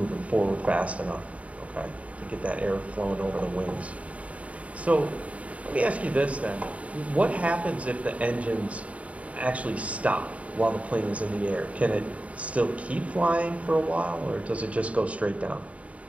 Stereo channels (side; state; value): left; late; 0.066 ms